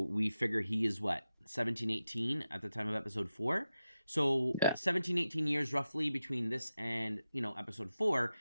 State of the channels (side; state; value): both; inverted; correlation -0.91